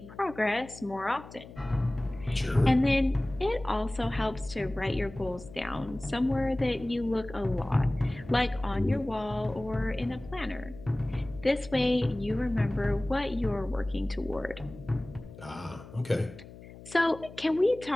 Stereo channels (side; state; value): left; noise; hum, 17 dB below the sound